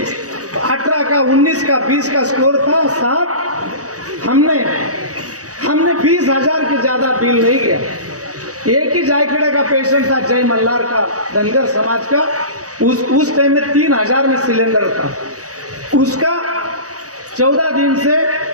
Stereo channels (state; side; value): late; left; 0.66 ms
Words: 18 का, 19 का, 20 का स्कोर था साहब, हमने 20,000 के ज्यादा बिल नहीं गया। एक ही जायखेड़ा का पेशेंट था, जय मल्हार का, धनगर समाज का, उस टाइम में 3,000 में सिलेंडर था। उसका 14 दिन से